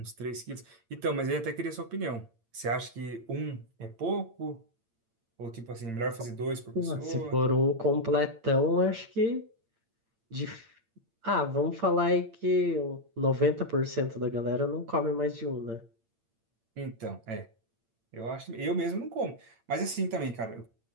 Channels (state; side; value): late; left; 8.8 ms